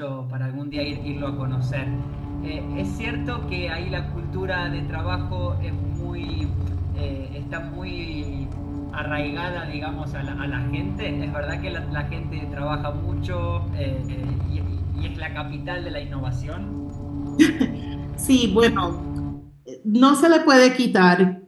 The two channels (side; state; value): both; identical; correlation 1.00